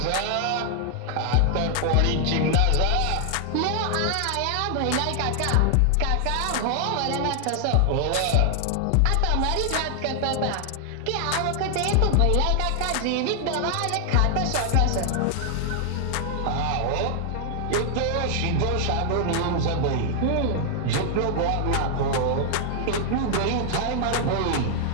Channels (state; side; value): different; both; correlation 0.00